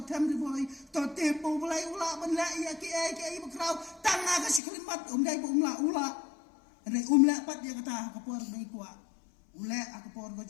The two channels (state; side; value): drops out; right; at 4.6 s